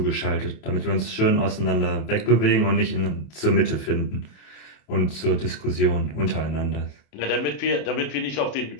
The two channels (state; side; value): late; right; 27 ms